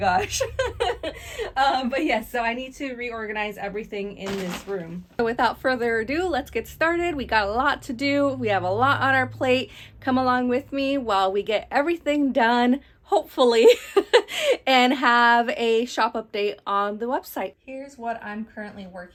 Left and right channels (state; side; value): identical; both; correlation 1.00